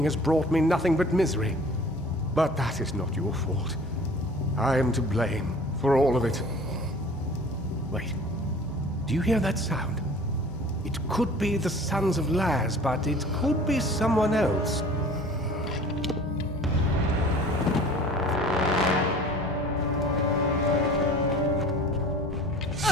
has brought me nothing but misery. But that is not your fault. I am to blame for all of it. Wait. Do you hear that sound? It could be the Sons of Laz, but it could be someone else.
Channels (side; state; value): both; normal; correlation 0.46